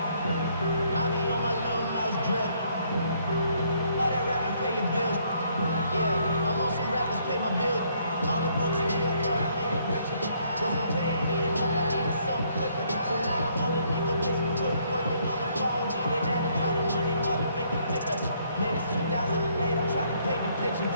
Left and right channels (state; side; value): inverted; both; correlation -0.68